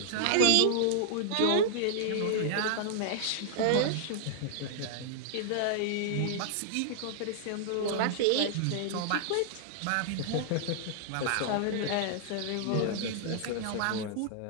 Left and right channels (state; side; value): different; both; correlation -0.01